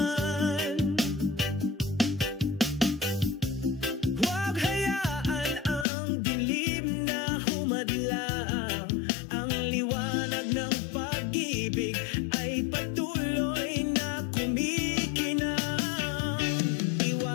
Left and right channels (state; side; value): drops out; right; at 5.9 s